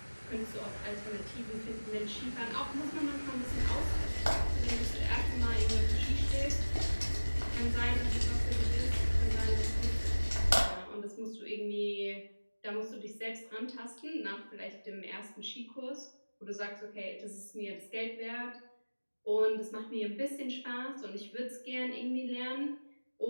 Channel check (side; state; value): both; inverted; correlation -1.00